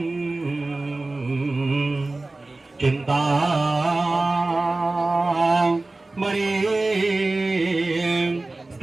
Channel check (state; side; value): quieter; left; 3.1 dB